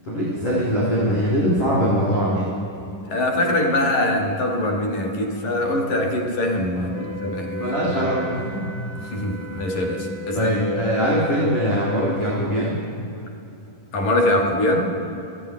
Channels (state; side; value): late; right; 11 ms